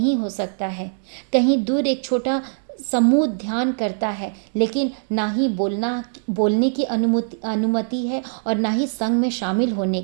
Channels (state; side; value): silent; left; digital silence